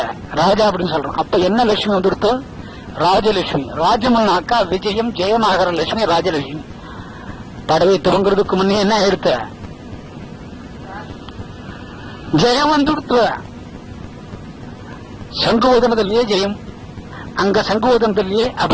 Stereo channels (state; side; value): identical; both; correlation 1.00